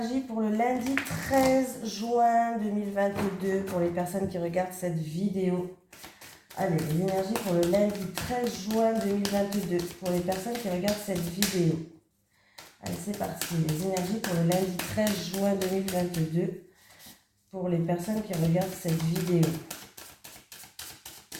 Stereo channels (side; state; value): both; identical; correlation 1.00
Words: pour le lundi 13 juin 2022 pour les personnes qui regardent cette vidéo. Allez, les énergies pour le lundi 13 juin 2022 pour les personnes qui regardent cette vidéo. Allez, c'est parti. Les énergies pour le lundi 13 juin 2022 pour les personnes qui regardent cette vidéo.